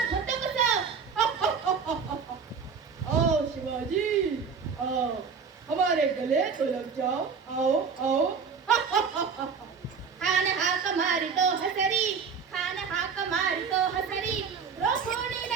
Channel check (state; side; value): quieter; left; 5.9 dB